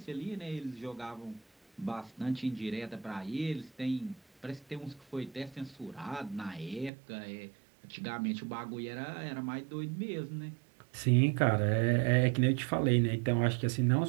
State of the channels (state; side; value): drops out; left; at 6.9 s